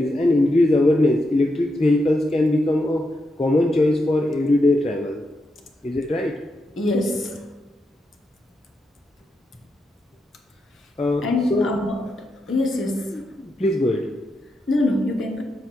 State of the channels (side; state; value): both; normal; correlation 0.84